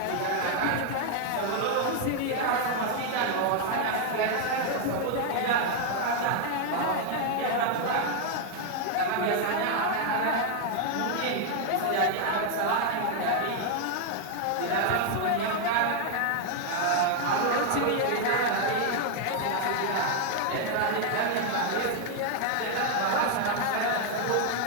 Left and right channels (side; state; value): both; different; correlation 0.00